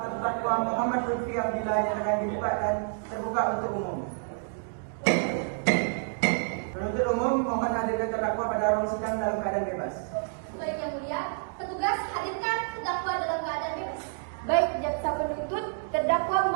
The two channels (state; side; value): silent; left; digital silence